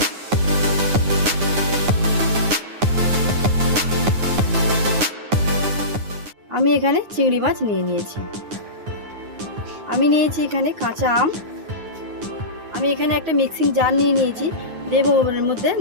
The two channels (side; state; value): left; late; 9.6 ms